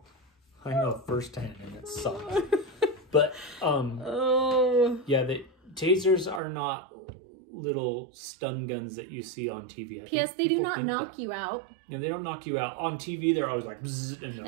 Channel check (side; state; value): left; drops out; at 6.4 s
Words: I know firsthand, and it sucks. But, yeah, the tasers are not little stun guns that you see on TV. P.S. They do not knock you out. Yeah, they don't knock you out. On TV, they're always like, bzzz,